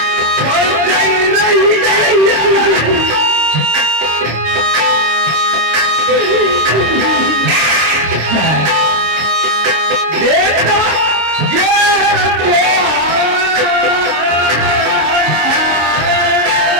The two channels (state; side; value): late; left; 26 ms